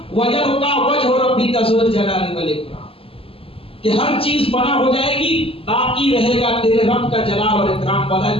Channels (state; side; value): late; right; 0.27 ms